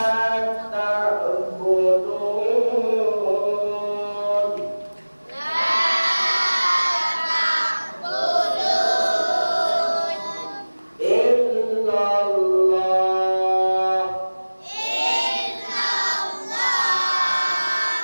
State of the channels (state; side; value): inverted; both; correlation -1.00